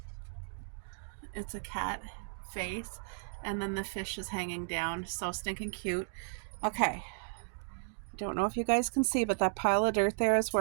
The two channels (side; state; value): left; silent; digital silence